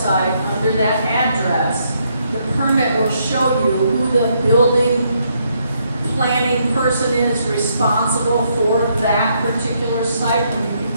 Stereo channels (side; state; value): both; inverted; correlation -0.74